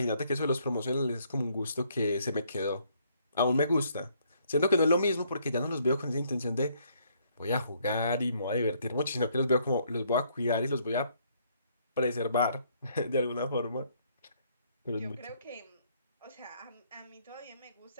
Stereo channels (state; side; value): inverted; both; correlation -0.68